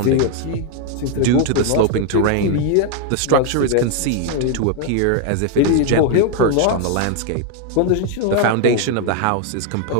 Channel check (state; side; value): different; both; correlation 0.01